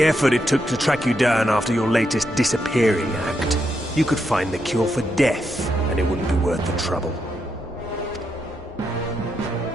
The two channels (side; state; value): left; noise; hum, 27 dB below the sound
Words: effort it took to track you down after your latest disappearing act, you could find the cure for death, and it wouldn't be worth the trouble.